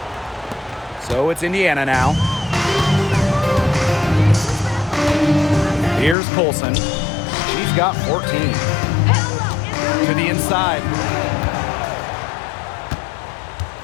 So it's Indiana now. Here's Colson. She's got 14. To the inside.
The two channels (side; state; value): right; drops out; at 6.2 s